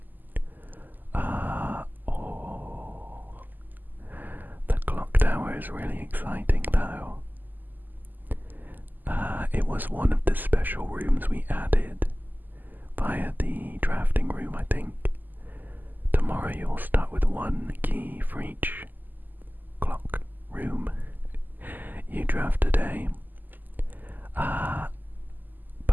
The clock tower is really exciting though. It was one of the special rooms we added via the drafting room, I think. Tomorrow you'll start with one key for each clock room you draft today.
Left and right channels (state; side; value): late; left; 0.086 ms